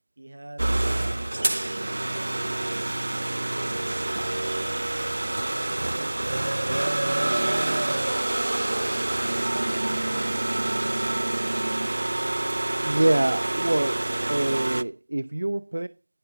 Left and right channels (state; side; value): inverted; both; correlation -1.00